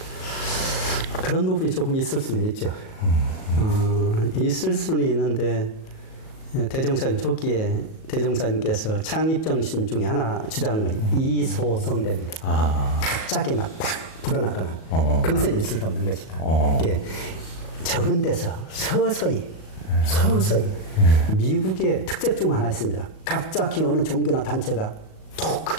그런 부분이 조금 있을 수는 있죠. 있을 수는 있는데 대종사님 초기에 대종사님께서 창립정신 중에 하나 주장한 것이 이소성대입니다. 갑자기 막 팍 불어나거나 그것은 있을 수 없는 것이다. 이게 적은 데서 서서히 미국의 특색 중 하나 있습니다. 갑자기 어느 종교나 단체가 더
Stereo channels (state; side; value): late; right; 37 ms